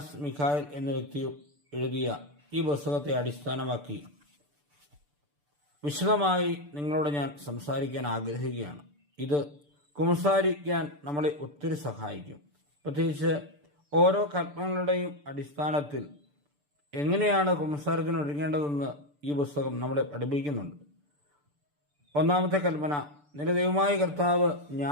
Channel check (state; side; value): late; left; 6.8 ms